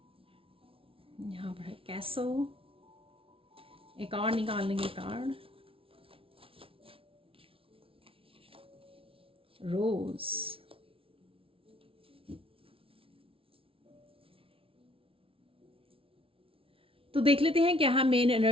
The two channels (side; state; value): left; late; 0.26 ms